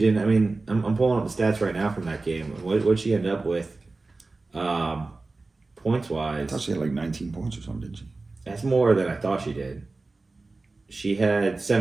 I mean, I'm pulling up the stats right now from that game. What she end up with, points I wise? thought she had like 19 points or something, didn't she? That's more than I thought she did. She had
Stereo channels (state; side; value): quieter; left; 3.5 dB